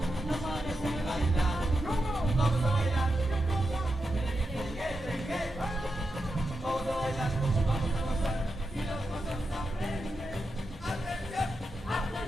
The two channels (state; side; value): normal; both; correlation 0.88